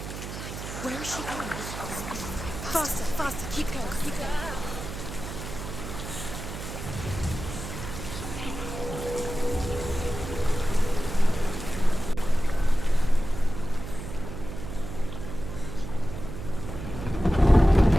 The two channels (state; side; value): noise; right; hum, 9 dB below the sound